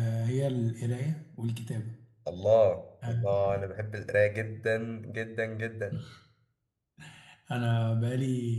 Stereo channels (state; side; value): identical; both; correlation 1.00